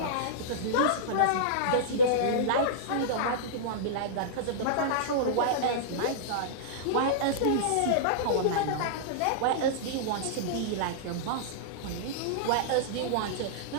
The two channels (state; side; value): different; both; correlation -0.03